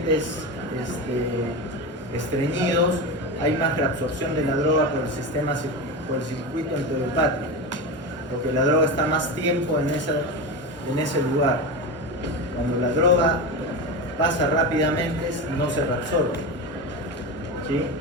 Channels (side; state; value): both; normal; correlation 0.21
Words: estreñidos hay más reabsorción de la droga por el circuito enterohepático, porque la droga está más tiempo en ese lugar. Cuando la droga pasa rápidamente no se reabsorbe, ¿sí?